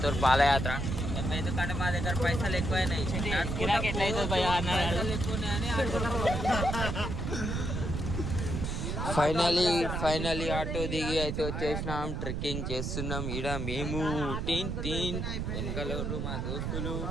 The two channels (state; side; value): noise; right; rumble, 2 dB below the sound